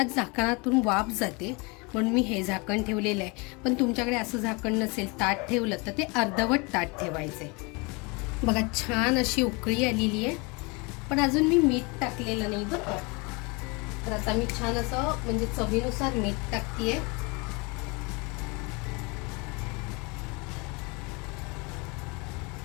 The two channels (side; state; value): right; quieter; 28.6 dB